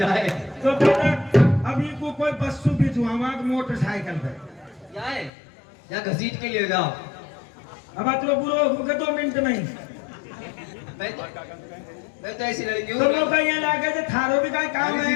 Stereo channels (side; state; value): right; drops out; at 5.3 s